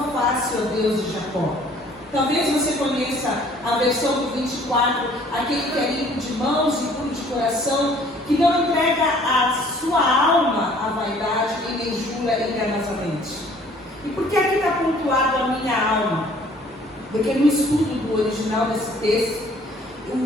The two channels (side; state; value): both; normal; correlation 0.56